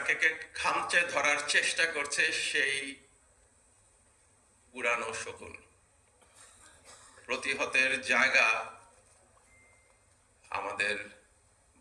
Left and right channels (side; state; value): both; identical; correlation 1.00